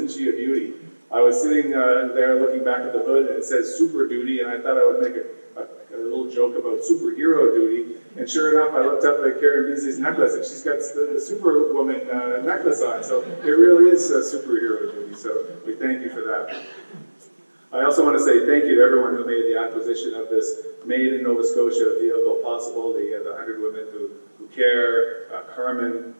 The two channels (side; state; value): both; inverted; correlation -1.00